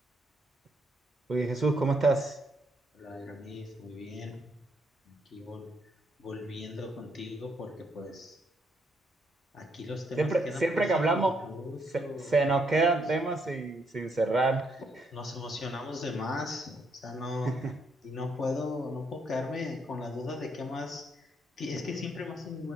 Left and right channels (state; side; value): normal; both; correlation 0.74